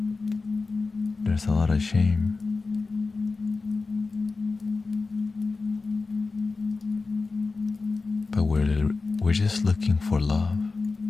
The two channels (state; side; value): quieter; right; 4.0 dB